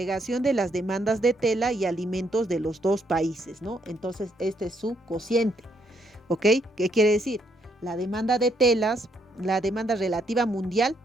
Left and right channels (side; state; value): both; normal; correlation 0.73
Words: de las demandas de tela y alimentos de los dos países, ¿no? Entonces, este es su cociente, ¿ok? ¿Qué quiere decir? La demanda de telas, la demanda relativa mundial